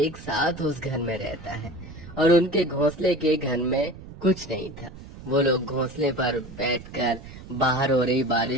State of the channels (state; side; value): noise; right; rumble, 15 dB below the sound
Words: साथ उस घर में रहता है, और उनके घोंसले के घर में कुछ नहीं था। वो लोग घोंसले पर बैठकर बाहर हो रही